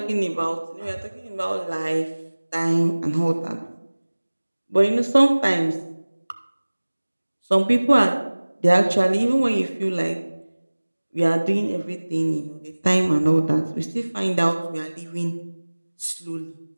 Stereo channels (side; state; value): both; inverted; correlation -1.00